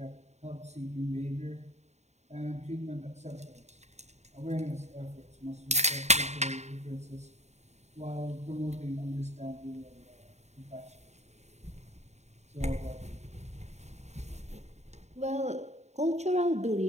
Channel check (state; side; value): late; left; 0.32 ms